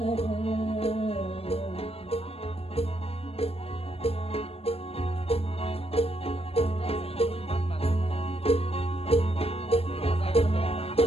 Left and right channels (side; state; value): right; late; 0.28 ms